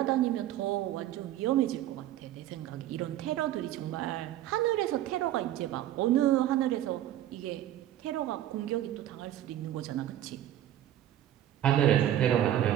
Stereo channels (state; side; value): quieter; left; 12.4 dB